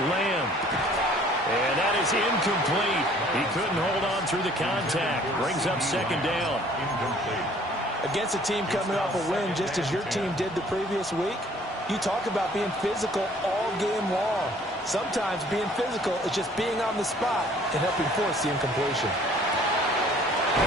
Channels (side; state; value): both; normal; correlation 0.56